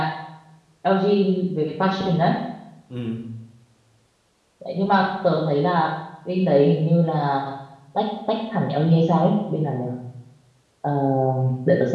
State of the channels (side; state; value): both; identical; correlation 1.00